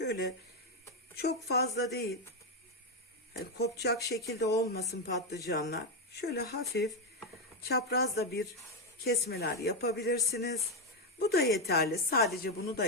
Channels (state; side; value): normal; both; correlation 0.06